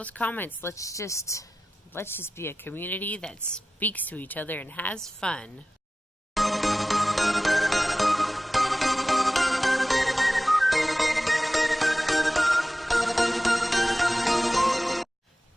comments. Let's just be a community that speaks to each other and has fun.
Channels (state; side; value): normal; both; correlation 0.95